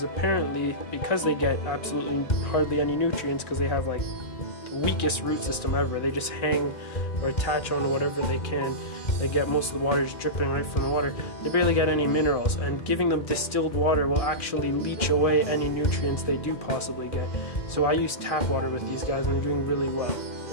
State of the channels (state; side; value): late; right; 2.3 ms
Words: apparently, because they get absolutely hardly any nutrients, because they have like the weakest root system ever, they just hang or attach on whatever they can. They get most of the water just dripping right from the water. They barely get any minerals, and giving them distilled water will actually leach away any nutrients they do possibly get. So I use tap water with these guys, and they're doing really well.